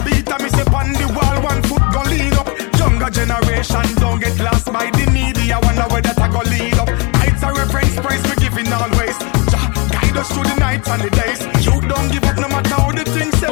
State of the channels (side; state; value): right; quieter; 28.6 dB